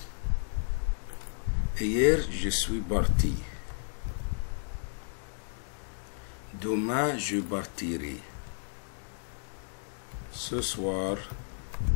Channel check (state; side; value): silent; right; digital silence